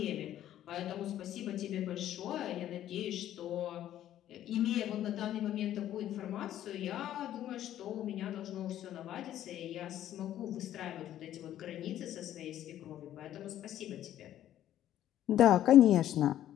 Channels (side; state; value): right; quieter; 12.0 dB